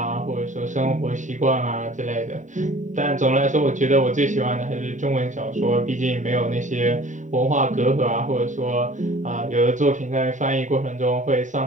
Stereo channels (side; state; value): left; late; 0.36 ms